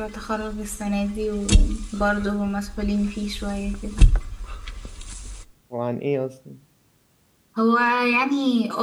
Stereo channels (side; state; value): both; identical; correlation 1.00